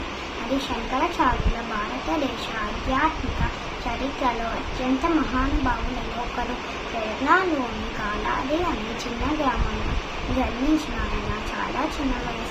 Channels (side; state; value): both; identical; correlation 1.00